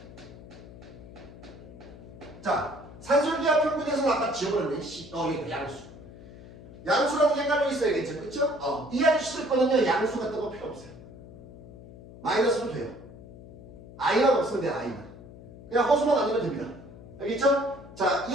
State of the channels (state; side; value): noise; left; hum, 17 dB below the sound